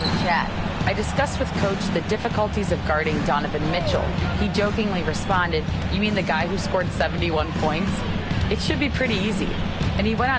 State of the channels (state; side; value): identical; both; correlation 1.00